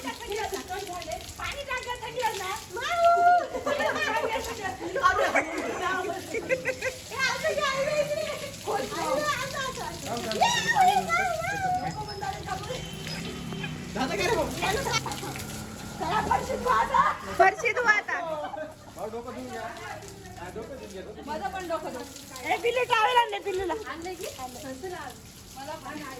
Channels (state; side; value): identical; both; correlation 1.00